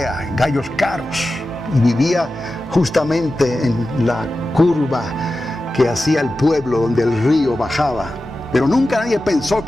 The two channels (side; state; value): both; normal; correlation 0.93